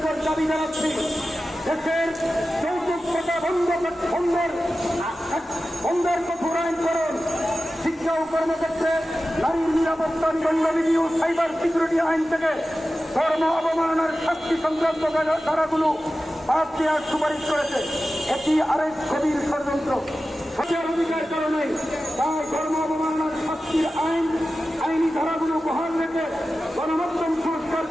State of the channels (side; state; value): both; normal; correlation 0.94